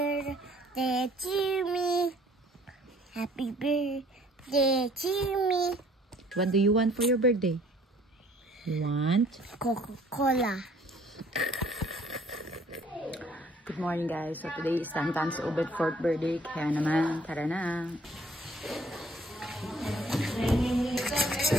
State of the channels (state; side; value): normal; both; correlation 0.58